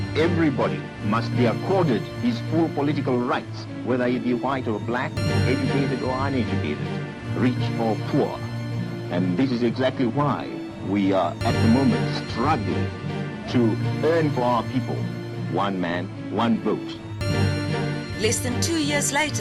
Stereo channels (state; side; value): identical; both; correlation 1.00